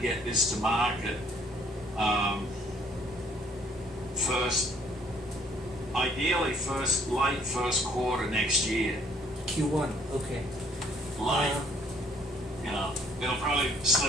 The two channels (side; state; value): both; normal; correlation 0.63